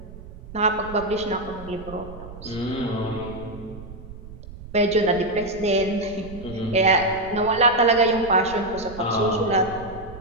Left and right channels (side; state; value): right; noise; rumble, 15 dB below the sound